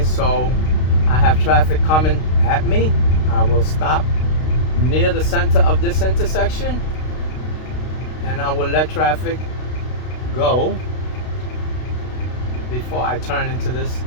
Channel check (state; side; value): late; right; 32 ms